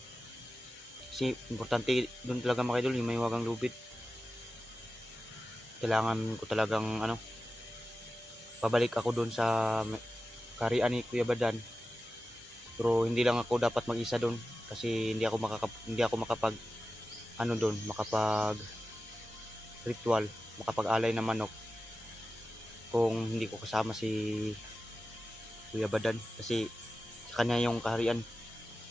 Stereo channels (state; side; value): normal; both; correlation 0.93